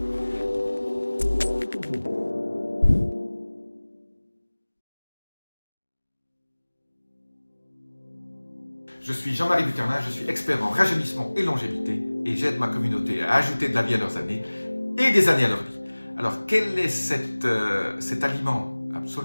Je suis Jean-Marie Bucarnin, je suis expert en rajeunissement et longévité et j'aide ma communauté à ajouter de la vie à leurs années et des années à leur vie. Alors, quel est cet aliment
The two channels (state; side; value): inverted; both; correlation -1.00